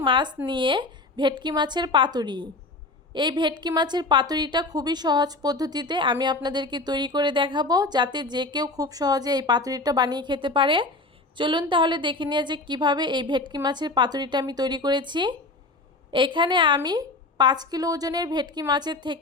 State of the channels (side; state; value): right; quieter; 3.2 dB